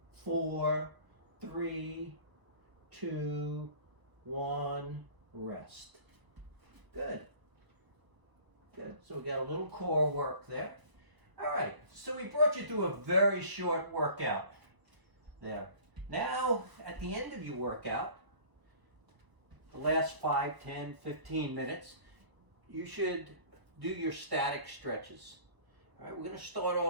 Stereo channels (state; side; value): late; left; 1.0 ms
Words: 4, 3, 2, 1. Rest. Good. Good. So we got a little core work there. All right. So we brought you through a very short workout there. Now, at the end of your workout, the last 5, 10, 15 minutes, you should do your static stretches. All right, we're going to start